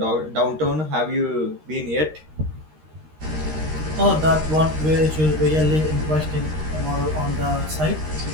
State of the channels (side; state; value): left; late; 13 ms